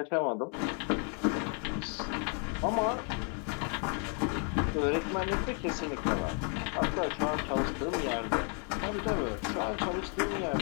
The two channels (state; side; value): quieter; right; 39.0 dB